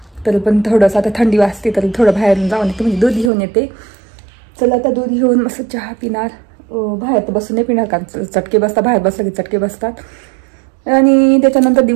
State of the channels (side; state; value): left; drops out; at 3.3 s